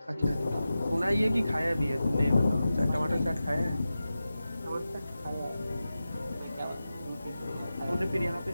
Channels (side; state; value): both; inverted; correlation -0.93